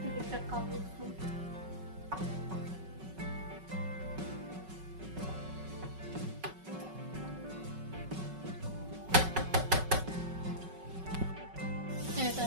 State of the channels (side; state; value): left; late; 5.4 ms